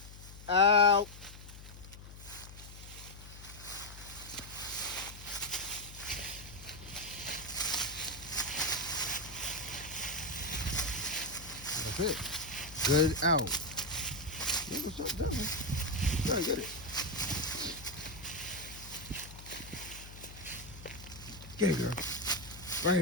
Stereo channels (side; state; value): left; noise; hum, 15 dB below the sound